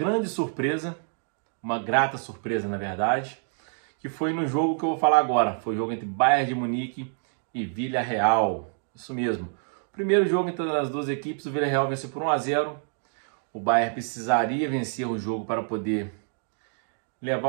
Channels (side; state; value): left; silent; 56 dB below the other